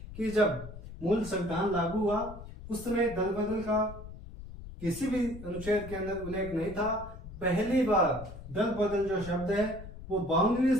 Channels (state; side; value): noise; left; rumble, 13 dB below the sound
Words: कि जब मूल संविधान लागू हुआ उस समय दल बदल का किसी भी अनुच्छेद के अंदर उल्लेख नहीं था। पहली बार दल बदल जो शब्द है वो 52वें